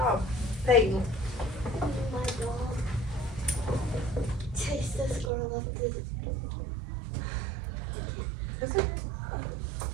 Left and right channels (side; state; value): left; drops out; at 5.3 s